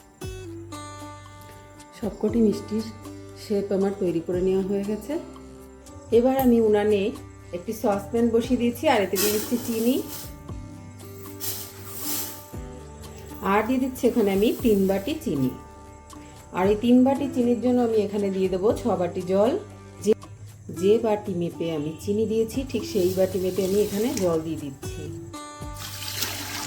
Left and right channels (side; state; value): both; identical; correlation 1.00